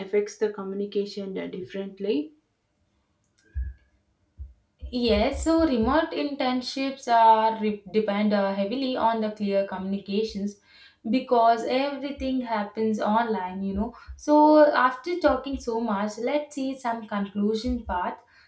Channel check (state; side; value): identical; both; correlation 1.00